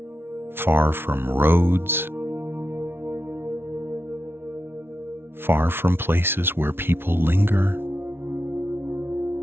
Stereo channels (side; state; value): left; late; 0.11 ms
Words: far from roads, far from places where people linger.